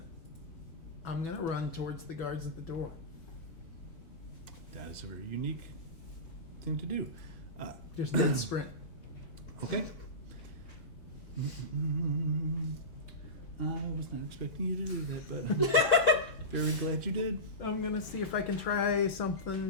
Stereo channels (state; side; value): late; right; 5.4 ms